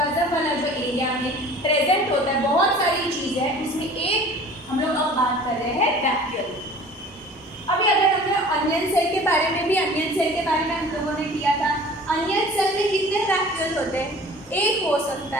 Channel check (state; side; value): normal; both; correlation 0.45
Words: वाला जो area में प्रेजेंट होता है बहुत सारी चीजें हैं, उसमें एक हम लोग अब बात कर रहे हैं वैक्यूल। अभी अगर हमने अनियन सेल के बारे में भी, अनियन सेल के बारे में हम लोगों ने किया था। अनियन सेल में कितने वैक्यूल होते हैं? एक हो